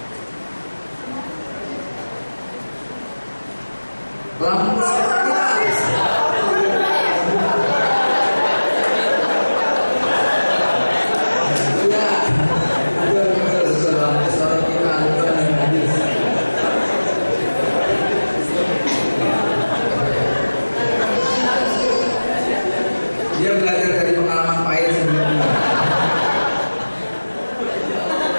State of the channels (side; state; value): both; inverted; correlation -1.00